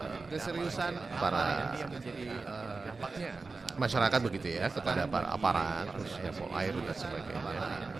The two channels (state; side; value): quieter; left; 4.0 dB